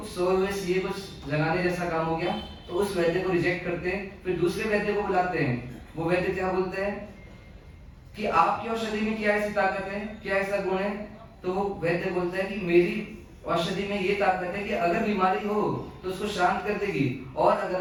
सोए हुए सीए कुछ जगाने जैसा काम हो गया। तो उस वैद्य को रिजेक्ट करते हैं, फिर दूसरे वैद्य को बुलाते हैं। वो वैद्य क्या बोलते हैं कि आपकी औषधि में क्या ऐसी ताकत है, क्या ऐसा गुण है। तो वो वैद्य बोलता है कि मेरी औषधि में ये ताकत है कि अगर बीमारी हो तो उसको शांत कर देगी, और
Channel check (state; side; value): identical; both; correlation 1.00